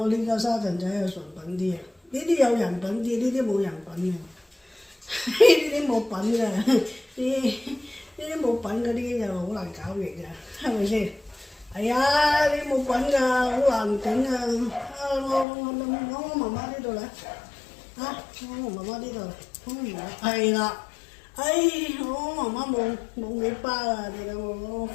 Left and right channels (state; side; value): drops out; right; at 15.5 s